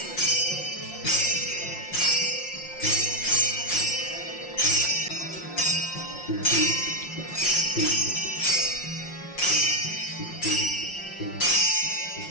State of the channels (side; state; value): right; late; 5.6 ms